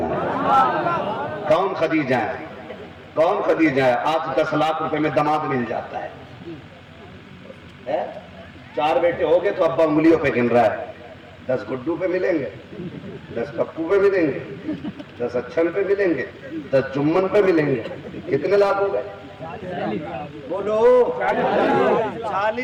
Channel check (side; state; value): both; identical; correlation 1.00